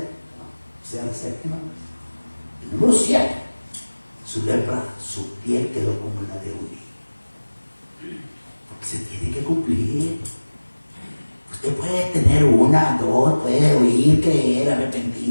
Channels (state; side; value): inverted; both; correlation -1.00